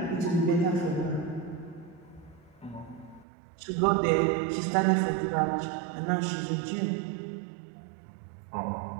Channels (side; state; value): left; drops out; at 3.2 s